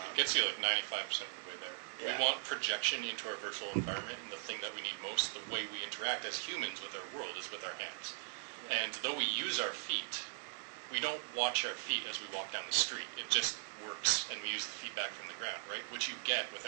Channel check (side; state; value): left; silent; 51 dB below the other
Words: gets you like 95% of the way there. Yeah. We want projection into our virtual environment, and the thing that we need most, the way we interact as humans with our world, is with our hands. Yeah. And though we use our feet, we don't watch our feet as we walk down the street. It just works, and we use the feedback from the ground, right? Which you get